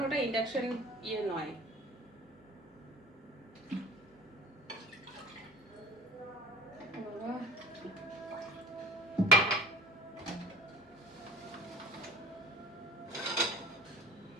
ওটা ইন্ডাকশন ইয়ে নয়।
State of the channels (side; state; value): both; normal; correlation 0.43